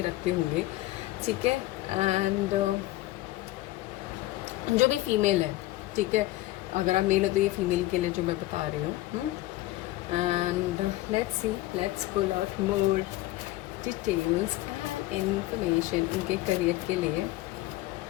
रखते होंगे। ठीक है, एंड जो भी फीमेल है, ठीक है, अगर आप मेल हो तो ये फीमेल के लिए जो मैं बता रही हूँ। And let's pull out more details and information उनके करियर के लिए।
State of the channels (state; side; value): quieter; right; 17.1 dB